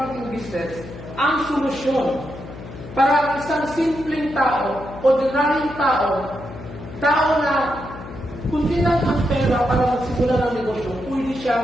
business, ang solusyon para ang isang simpleng tao, ordinaryong tao na kundi lang ang pera para magsimula ng negosyo, pwede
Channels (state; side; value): noise; left; hum, 13 dB below the sound